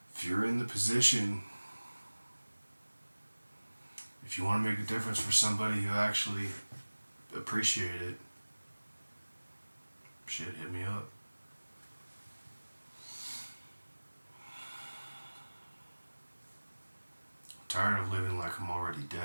if you're in the position, if you want to make a difference for somebody who actually appreciate it, shit, hit me up. I'm tired of living like I'm already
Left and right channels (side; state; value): both; inverted; correlation -1.00